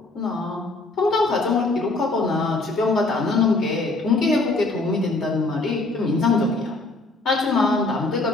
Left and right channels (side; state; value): right; quieter; 3.2 dB